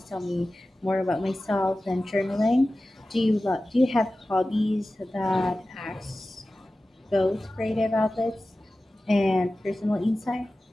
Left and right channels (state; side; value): normal; both; correlation 0.96